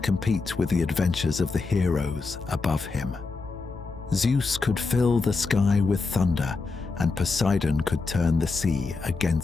with the adventures of the heroes above him. Zeus could fill the sky with thunder, and Poseidon could turn the sea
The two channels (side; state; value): right; quieter; 4.1 dB